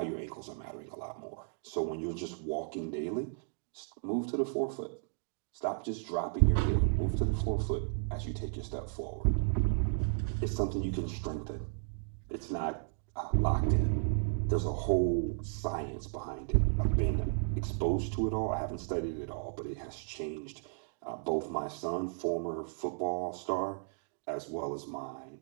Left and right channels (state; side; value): silent; left; digital silence